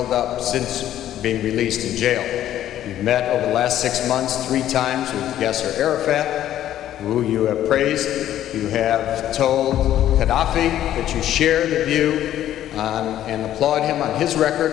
up since being released in jail. You've met over the last 6 months 3 times with Yasser Arafat, who you have praised. You have told Gaddafi that you share the view and applaud him on his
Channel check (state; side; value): quieter; right; 12.0 dB